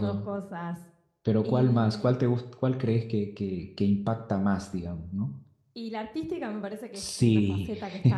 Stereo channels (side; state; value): both; identical; correlation 1.00